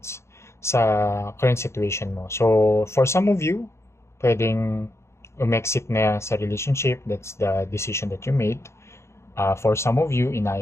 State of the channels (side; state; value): right; late; 0.13 ms